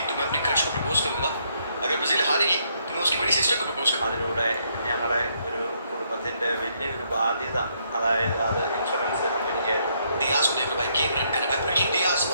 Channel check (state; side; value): inverted; both; correlation -0.73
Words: तो मैं अपनी क्रश को प्रपोज करूंगा. अगर ब्राजील हारेगी तो मैं उसकी बड़ी सिस्टर को प्रपोज करूंगा. അതിലൂടെ ഞങ്ങളുടെ ഒരു കുടുംബത്തിൻ്റെ വലിയൊരു ബാധ്യത അതായത് അത് ഇൻഷുറൻസ് കമ്പനിക്ക് Diaz को देख लो भाई गेम रन करना भाई Brahim Diaz